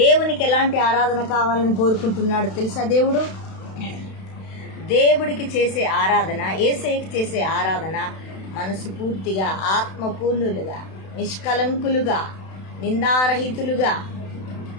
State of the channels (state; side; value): late; right; 32 ms